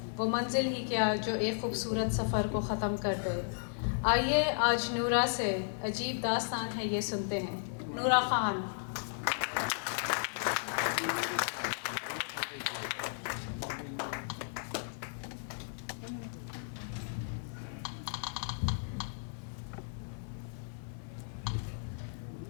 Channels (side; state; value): right; silent; 55 dB below the other